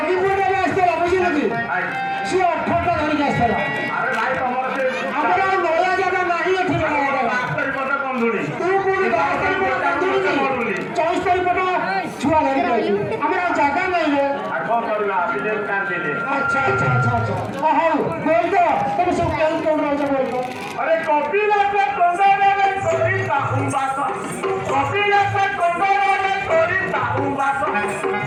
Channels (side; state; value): both; identical; correlation 1.00